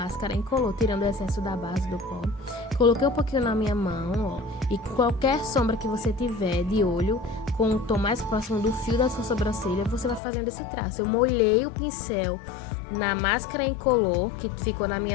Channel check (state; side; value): drops out; right; at 10.2 s